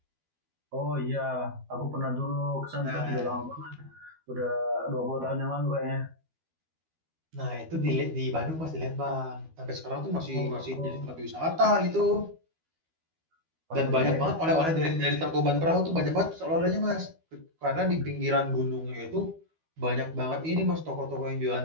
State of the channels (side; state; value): left; late; 12 ms